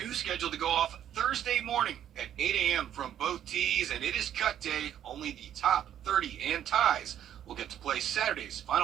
scheduled to go off Thursday morning at 8 a.m. from both tees, and it is cut day. Only the top 30 and ties will get to play Saturday's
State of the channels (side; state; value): left; quieter; 10.5 dB